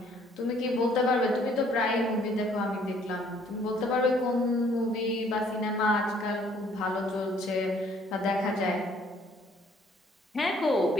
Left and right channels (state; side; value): normal; both; correlation 0.62